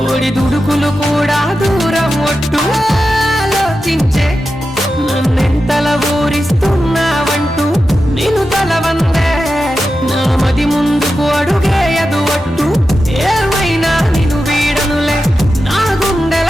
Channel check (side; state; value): both; normal; correlation 0.91